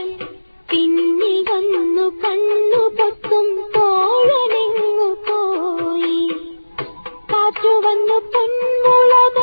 പിന്നിൽ വന്നു കണ്ണു പൊത്തും തോഴനെങ്ങു പോയി. കാറ്റു വന്നു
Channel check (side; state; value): both; inverted; correlation -1.00